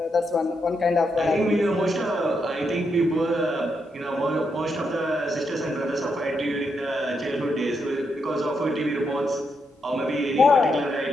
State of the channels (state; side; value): normal; both; correlation 0.81